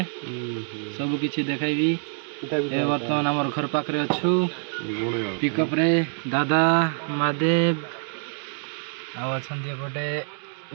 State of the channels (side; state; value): left; silent; 55 dB below the other